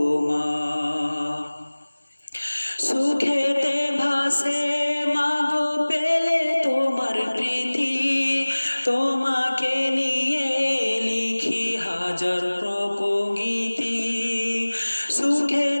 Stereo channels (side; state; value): both; inverted; correlation -1.00